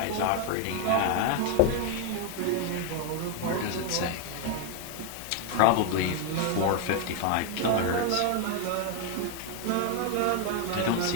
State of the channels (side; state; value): both; different; correlation 0.01